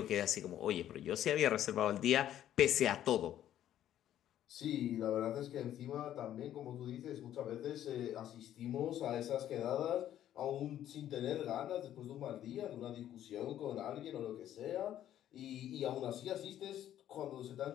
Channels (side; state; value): right; quieter; 11.6 dB